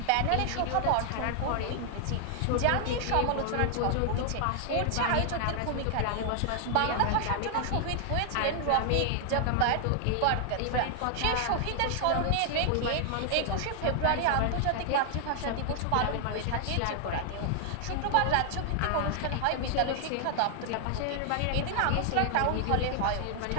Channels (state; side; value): different; both; correlation 0.00